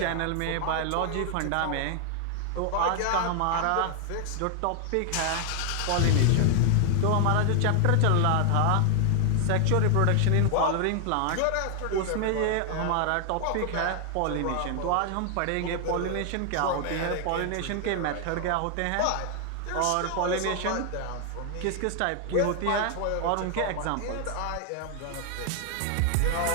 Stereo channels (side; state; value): both; different; correlation 0.00